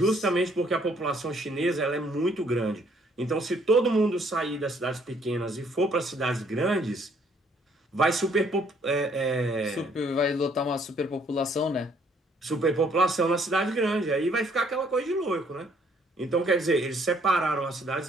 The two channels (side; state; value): both; normal; correlation 0.64